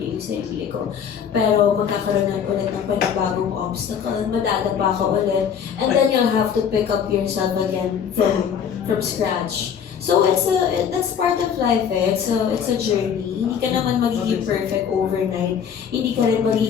yung sarili ko. Pero magkakaroon na ulit ng panibagong obstacle, madadapa ka ulit, and then you'll have to pick up yourself again from scratch. So that's part of life eh. It's a journey. Hindi ka naman magiging perfect overnight. Hindi ka rin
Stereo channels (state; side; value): quieter; right; 7.7 dB